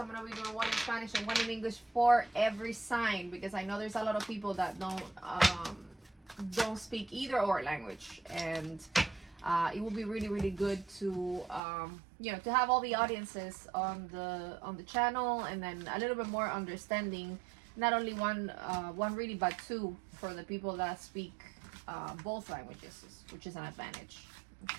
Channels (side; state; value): left; drops out; at 11.6 s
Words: going to be doing one in Spanish and one in English for every sign, because I know there's a lot of people that don't speak either or language, and it will be really good to to have all the audiences on the channel, and then a little bit more understanding, not only one reading but 2 for the people that speak both languages, which is an advantage.